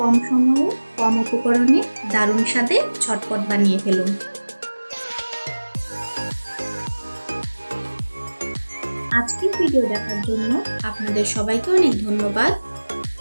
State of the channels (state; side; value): inverted; both; correlation -1.00